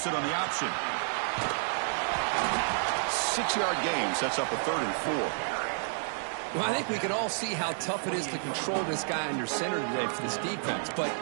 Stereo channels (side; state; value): left; silent; digital silence